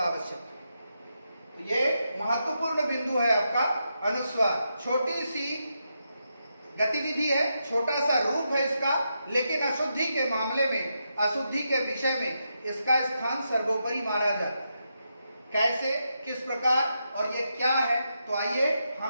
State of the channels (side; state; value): both; inverted; correlation -0.84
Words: है। तो ये महत्वपूर्ण बिंदु है आपका अनुस्वार। छोटी सी गतिविधि है, छोटा सा रूप है इसका, लेकिन अशुद्धि के मामले में, अशुद्धि के विषय में इसका स्थान सर्वोपरि माना जाता है। कैसे, किस प्रकार और ये क्या है, तो आइए